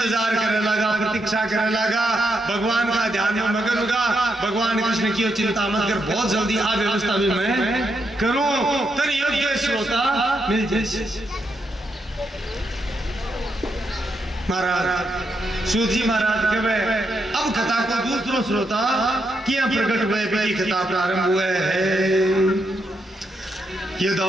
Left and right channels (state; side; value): normal; both; correlation 0.81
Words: करने लगा, प्रतीक्षा करने लगा, भगवान का ध्यान में मगन होगा। भगवान कृष्ण की चिंता मत कर, बहुत जल्दी आ व्यवस्था भी मैं करूं, तो योग्य श्रोता मिल जाए। महाराज सूत जी महाराज कहे अब कथा को दूसरो श्रोता किया प्रकट हुए भी कथा प्रारंभ हुए है।